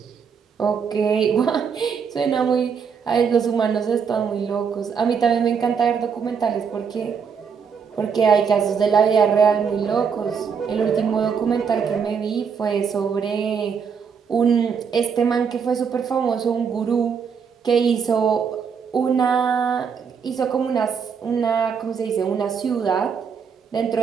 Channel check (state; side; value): quieter; left; 6.5 dB